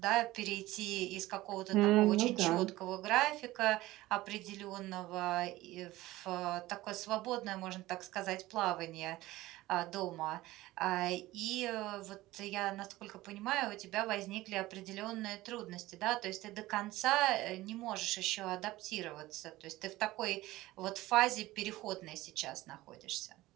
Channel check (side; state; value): left; quieter; 17.6 dB